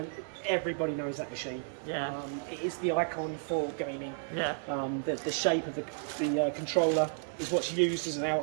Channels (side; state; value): left; silent; digital silence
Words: everybody knows that machine. Yeah. It is the icon for gaming. Yeah. The shape of the controller is what's used as an